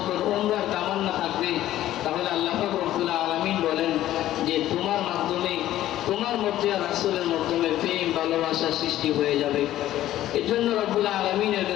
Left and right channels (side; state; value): right; quieter; 13.5 dB